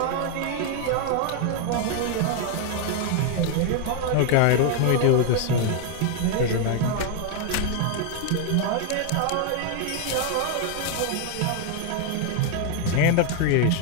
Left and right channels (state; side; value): different; both; correlation 0.00